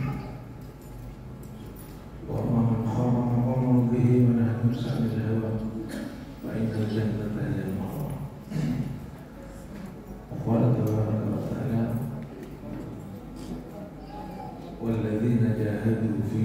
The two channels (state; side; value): identical; both; correlation 1.00